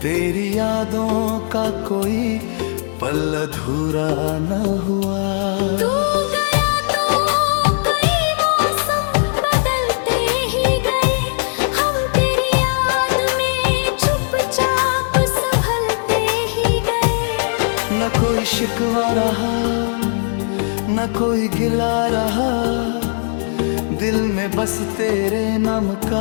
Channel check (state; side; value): silent; right; digital silence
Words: यादों का कोई पल अधूरा ना हुआ। तू गया तो कई मौसम बदलते ही गए, हम तेरी याद में चुपचाप संभलते ही गए। न कोई शिकवा रहा न कोई गिला रहा, दिल में बस तेरे नाम